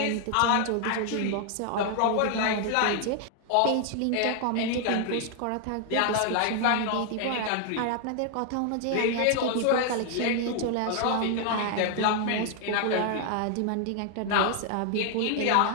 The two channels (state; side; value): different; both; correlation 0.00